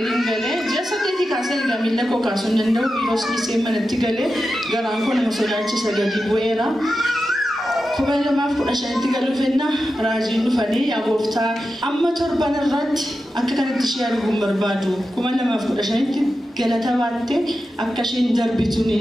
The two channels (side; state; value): both; normal; correlation 0.91